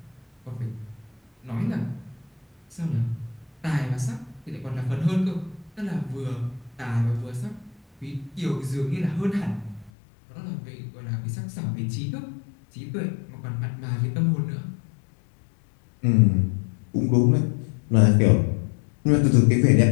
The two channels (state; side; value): drops out; right; at 9.9 s